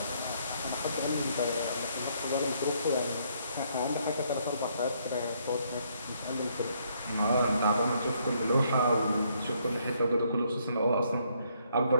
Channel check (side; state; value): both; inverted; correlation -0.70